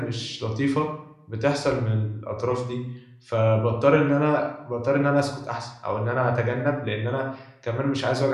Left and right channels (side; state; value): both; identical; correlation 1.00